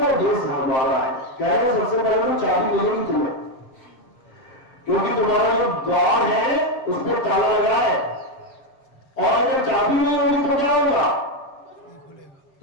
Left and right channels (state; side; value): late; right; 7.6 ms